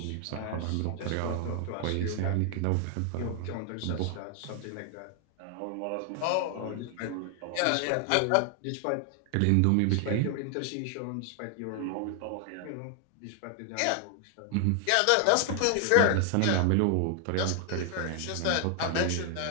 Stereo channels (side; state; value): both; different; correlation 0.00